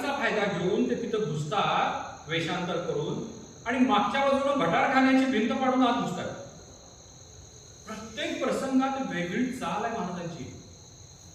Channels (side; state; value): both; identical; correlation 1.00